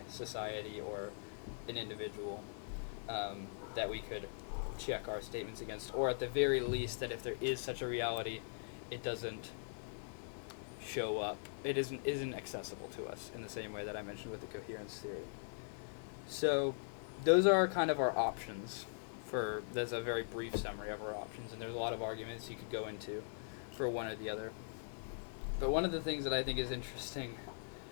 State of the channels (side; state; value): right; silent; digital silence